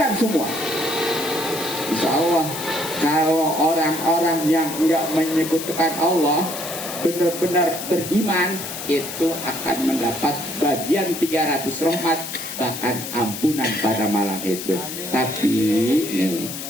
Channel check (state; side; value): noise; left; hiss, 8 dB below the sound